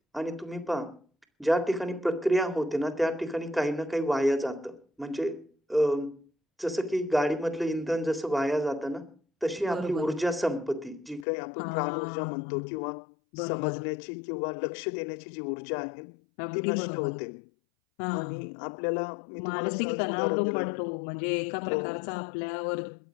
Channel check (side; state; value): right; drops out; at 11.2 s